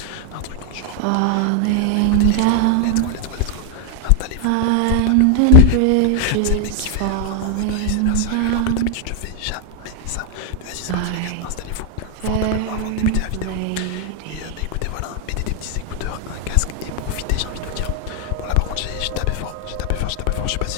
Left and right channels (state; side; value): different; both; correlation 0.00